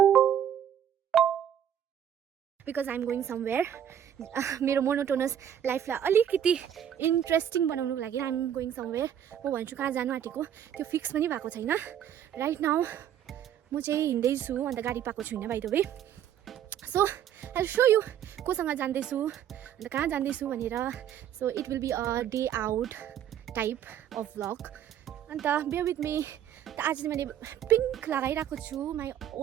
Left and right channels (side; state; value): left; quieter; 9.9 dB